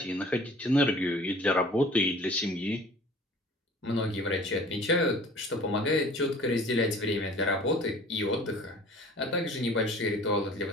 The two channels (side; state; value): both; normal; correlation 0.47